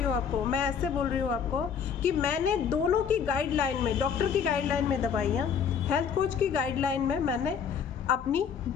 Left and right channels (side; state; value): right; quieter; 7.1 dB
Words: हूँ आपको, मैं ऐसे बोल रही हूँ आपको कि मैंने दोनों की गाइडलाइन में, डॉक्टर की गाइडलाइन में दवाइयाँ, हेल्थ कोच की गाइडलाइन में मैंने